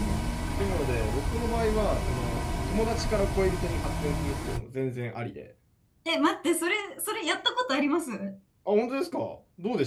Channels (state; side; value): identical; both; correlation 1.00